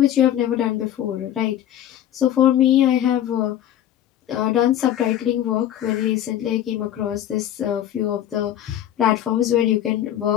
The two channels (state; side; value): quieter; right; 11.4 dB